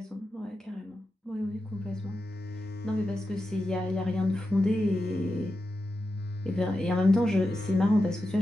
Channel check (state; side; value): normal; both; correlation 0.90